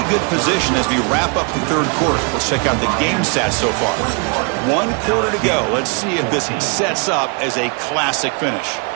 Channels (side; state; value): left; quieter; 34.8 dB